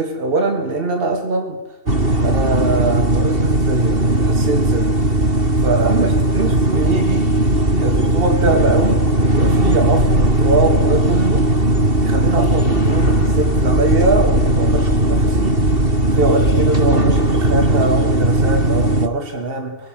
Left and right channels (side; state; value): left; late; 2.7 ms